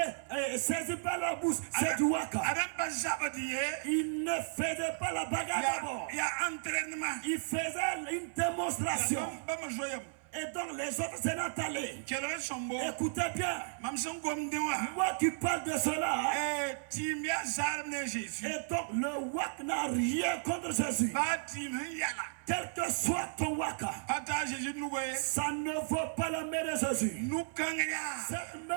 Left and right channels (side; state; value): left; silent; 55 dB below the other